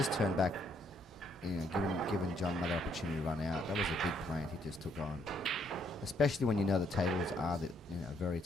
turned back, given John another opportunity to run out. That was a big plant he just took on, especially when you know the tables are very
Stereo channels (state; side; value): normal; both; correlation 0.70